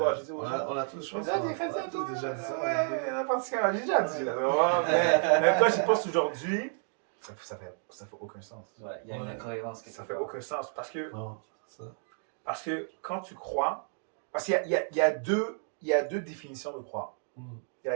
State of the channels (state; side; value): silent; left; 57 dB below the other